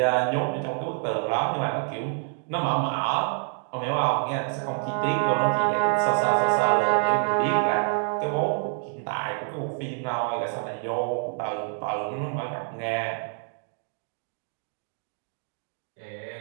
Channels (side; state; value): left; silent; 56 dB below the other